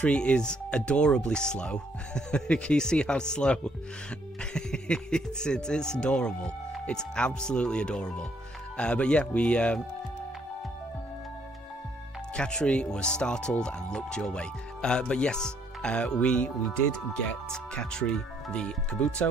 is adorably slow. Can you see how slow? It's adorable. It's absolutely adorable. But yeah, we Katri was startled and looked your way. But yes, we did get Katri the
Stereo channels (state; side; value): normal; both; correlation 0.68